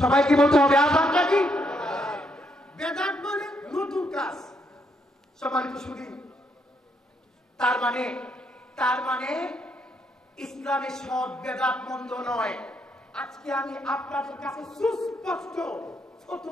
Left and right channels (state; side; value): normal; both; correlation 0.75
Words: সবাইকে বলতে হবে, আযানটা কি? বেদাত মানে নতুন কাজ। সম্মানিত শুনি, তার মানে ইসলামে সব বেদাত মন্দ নয়। আজকে আমি আপনাদের কাছে সুস্পষ্ট